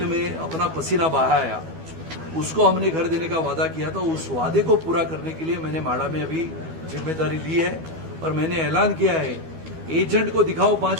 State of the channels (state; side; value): late; left; 12 ms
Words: में अपना पसीना बहाया उसको हमने घर देने का वादा किया था। उस वादे को पूरा करने के लिए मैंने माड़ा में अभी जिम्मेदारी ली है और मैंने ऐलान किया है, एजेंट को दिखाओ